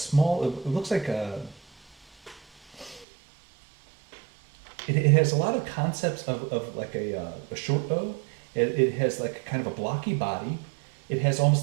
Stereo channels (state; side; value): drops out; left; at 3.1 s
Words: it looks like it has a lot of concepts of like a short bow. It has like kind of a blocky body. It has